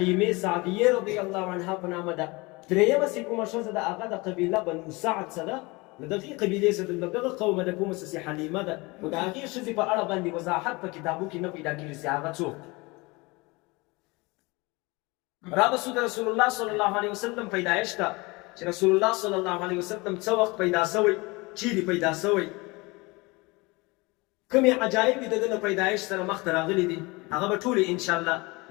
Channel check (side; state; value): right; quieter; 24.8 dB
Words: سعدیې رضی الله عنها په نامه ده. درېیمه چې کومه ښځه ده هغه د قبیله بنو سعد څه ده، د دغې قبیلې څه د دغه قومه د کومه څه حلیمه ده. خو د هغې ښځې په اړه باندې وضاحت په کتابو کې نه پیدا کېږي چې هغه څوک. رابسو د رسول الله صلی الله علیه وسلم پیدایش ته چې رسول الله صلی الله علیه وسلم څه وخت پیدا شوی، چیرې پیدا شوی، کومې عجایب د ده له پیدایش سره مخته راغلي دي، هغه به ټولې انشاءالله